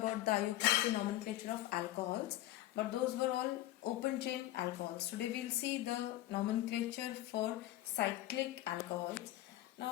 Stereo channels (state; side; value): quieter; right; 14.8 dB